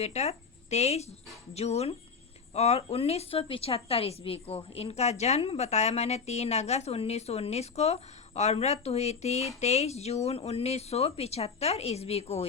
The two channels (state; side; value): quieter; right; 5.4 dB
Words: 23 जून और 1975 ईस्वी को। इनका जन्म बताया मैंने 3 अगस्त 1919 को और मृत्यु हुई थी 23 जून 1975 ईस्वी को